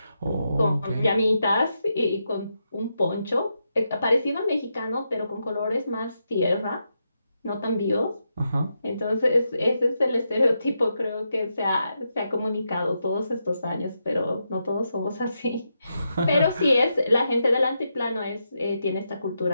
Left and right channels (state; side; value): inverted; both; correlation -0.85